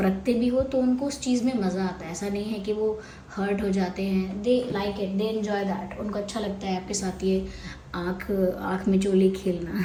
भी हो तो उनको उस चीज़ में मज़ा आता है। ऐसा नहीं है कि वो हर्ट हो जाते हैं, they like it, they enjoy that. उनको अच्छा लगता है आपके साथ ये आँख में चोली खेलना।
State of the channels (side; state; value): both; identical; correlation 1.00